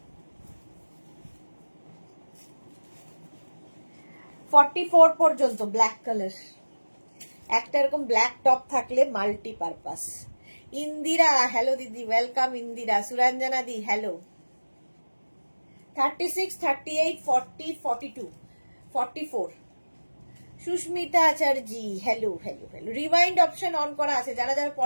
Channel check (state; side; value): inverted; both; correlation -1.00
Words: 44 পর্যন্ত ব্ল্যাক কালার। একটা এরকম ব্ল্যাক টপ থাকলে মাল্টিপারপাস। ইন্দিরা, হ্যালো দিদি, ওয়েলকাম ইন্দিরা। সুরঞ্জনা দি, hello. 36, 38, 40, 42, 44। Susmita Acharya, hello hello hello. Rewind option on করা আছে, যারা যারা